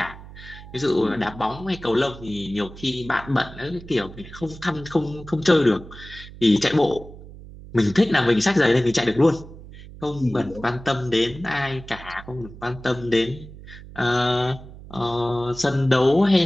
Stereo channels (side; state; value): right; noise; hum, 16 dB below the sound